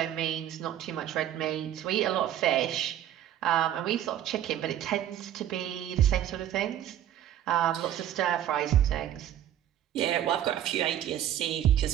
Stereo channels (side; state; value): left; quieter; 11.3 dB